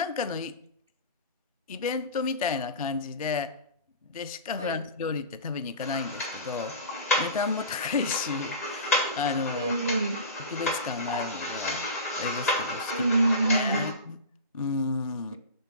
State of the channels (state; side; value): inverted; both; correlation -0.31